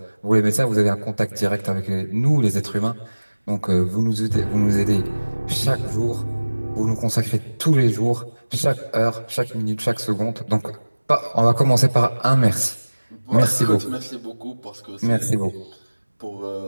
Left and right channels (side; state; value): both; inverted; correlation -1.00